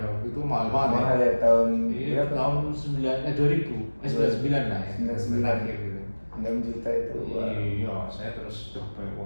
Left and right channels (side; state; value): both; inverted; correlation -1.00